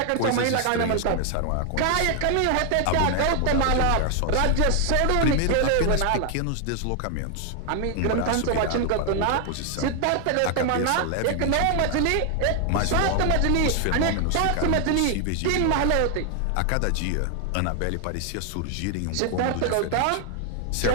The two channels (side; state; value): both; different; correlation 0.00